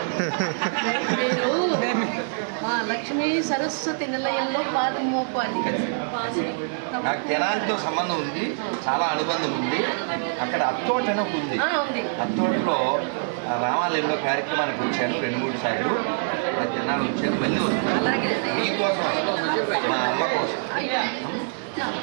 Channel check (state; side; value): silent; left; digital silence